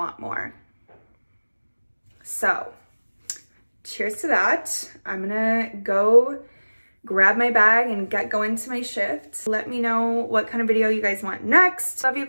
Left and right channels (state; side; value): inverted; both; correlation -1.00